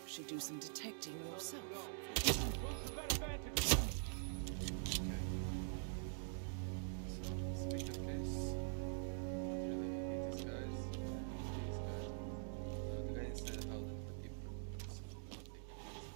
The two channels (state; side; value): silent; left; digital silence